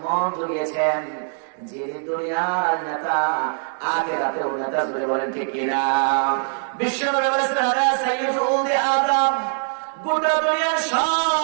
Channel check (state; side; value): silent; left; digital silence